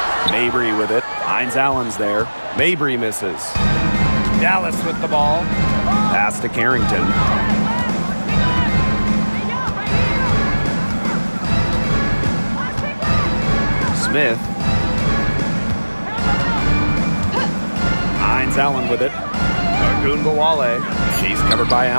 Mabry with it. Hines Allen's there. Mabry misses. Dallas with the ball. Pass to Carrington. Smith. Hines Allen with it. Agubawale. She's covered by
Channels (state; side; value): inverted; both; correlation -1.00